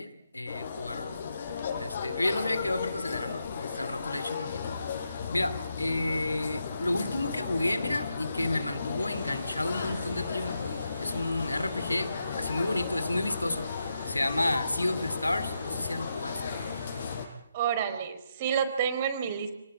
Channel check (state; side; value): inverted; both; correlation -0.81